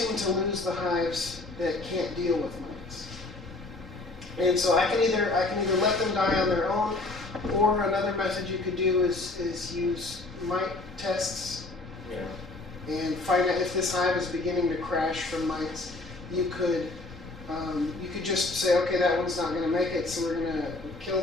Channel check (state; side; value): quieter; right; 3.1 dB